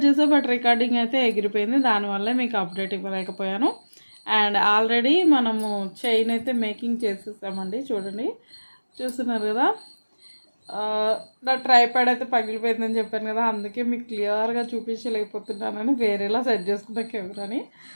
చేసా, బట్ రికార్డింగ్ అయితే ఎగిరిపోయింది. దానివల్ల మీకు అప్డేట్ ఇవ్వలేకపోయాను. అండ్ ఆల్రెడీ మనము చైన్ అయితే మేకింగ్ చేసేసామండి. చూడండి, చూస్తున్నారు కదా. నా ట్రైపాడ్ అయితే పగిలిపోయిందని చెప్పాను కదా, అందుకే మీకు క్లియర్గా చూపించలేకపోతున్నానని వేరేలా సెట్ చేసుకున్న కెమెరాని,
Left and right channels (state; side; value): inverted; both; correlation -1.00